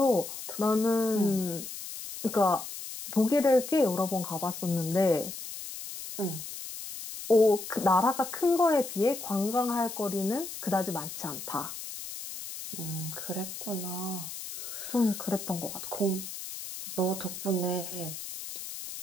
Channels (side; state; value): left; noise; hiss, 9 dB below the sound